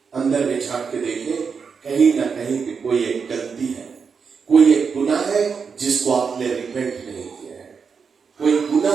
अंदर में झांक के देखे, कहीं ना कहीं पे कोई एक गलती है, कोई एक गुनाह है जिसको आपने रिपेंट नहीं किया है, कोई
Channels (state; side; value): quieter; left; 5.8 dB